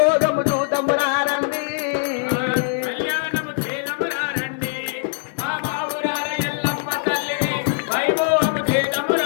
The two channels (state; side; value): silent; right; digital silence